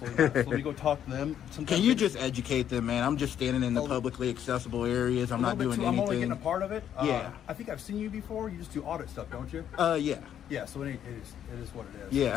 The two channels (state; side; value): quieter; right; 9.8 dB